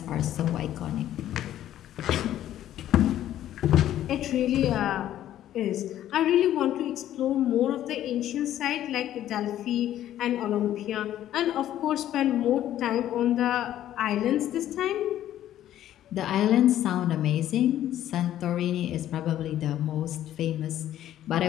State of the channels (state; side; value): quieter; right; 12.2 dB